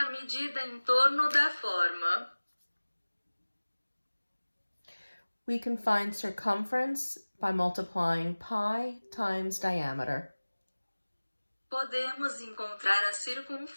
medida em torno da forma. We can find circumference by multiplying pi times diameter. Podemos encontrar a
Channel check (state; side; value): inverted; both; correlation -1.00